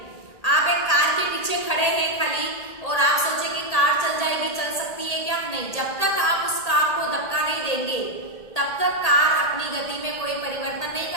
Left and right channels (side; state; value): right; late; 1.8 ms